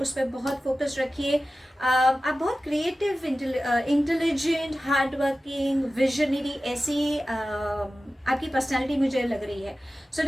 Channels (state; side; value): normal; both; correlation 0.95